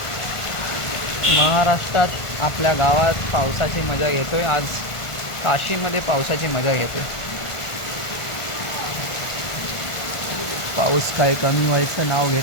महाराष्ट्रात आपल्या गावात पावसाची मजा घेतोय. आज काशीमध्ये पावसाची मजा घेतोय. पाऊस काही कमी व्हायचं नाव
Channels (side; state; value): right; late; 1.5 ms